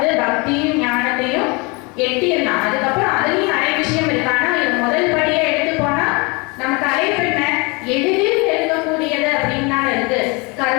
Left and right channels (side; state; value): right; quieter; 28.3 dB